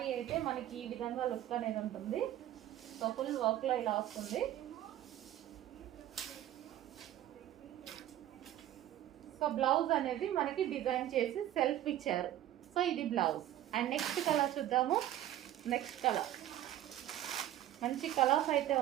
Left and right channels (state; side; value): quieter; left; 12.9 dB